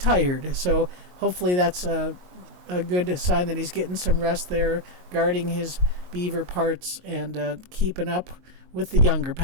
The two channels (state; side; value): late; left; 22 ms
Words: So hopefully that's a good sign that he's getting some rest there, guarding his beaver parts, and keeping up with the younger